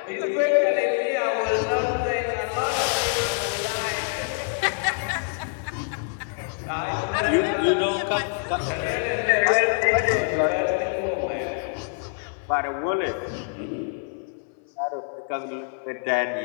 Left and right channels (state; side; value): silent; right; 59 dB below the other